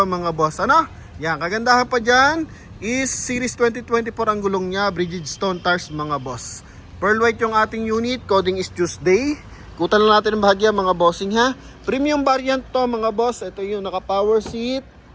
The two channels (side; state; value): both; identical; correlation 1.00